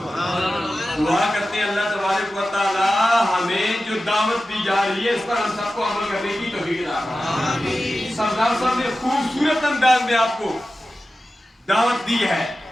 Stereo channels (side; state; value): both; normal; correlation 0.94